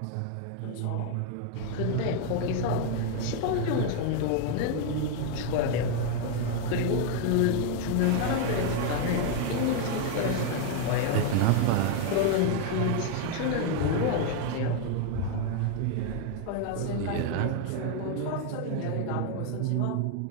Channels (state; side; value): different; both; correlation 0.00